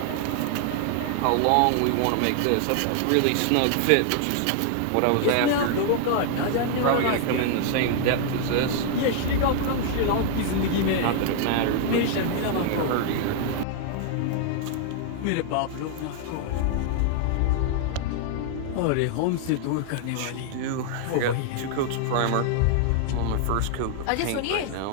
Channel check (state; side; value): different; both; correlation 0.00